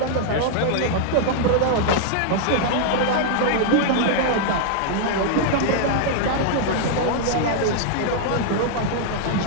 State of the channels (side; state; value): both; different; correlation -0.01